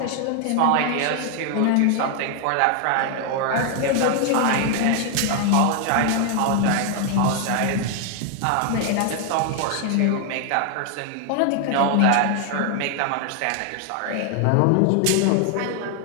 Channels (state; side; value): different; both; correlation 0.00